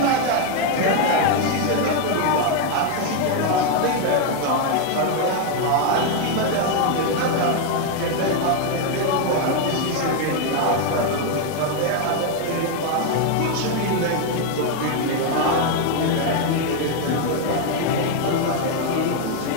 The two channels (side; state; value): both; different; correlation 0.01